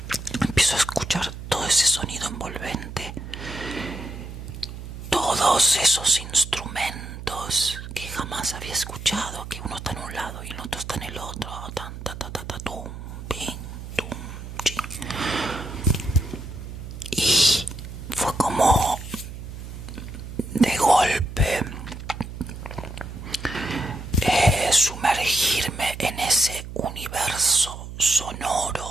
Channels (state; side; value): noise; right; hum, 10 dB below the sound